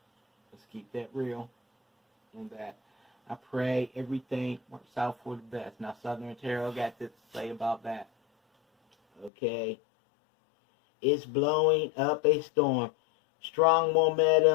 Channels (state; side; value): drops out; right; at 9.3 s